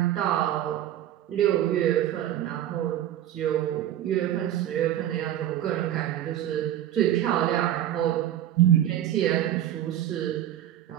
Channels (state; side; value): quieter; left; 11.9 dB